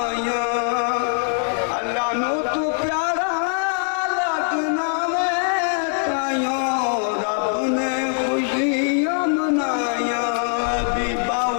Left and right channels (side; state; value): right; silent; 57 dB below the other